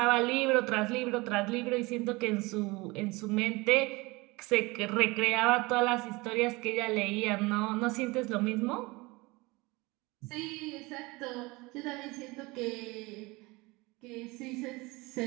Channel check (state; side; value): quieter; left; 23.7 dB